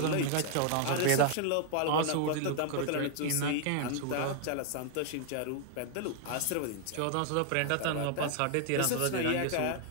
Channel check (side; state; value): both; different; correlation 0.00